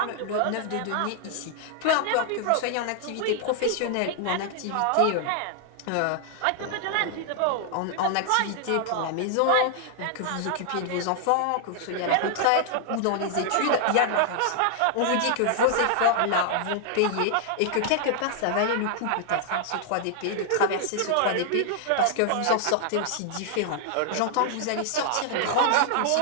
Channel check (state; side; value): different; both; correlation 0.00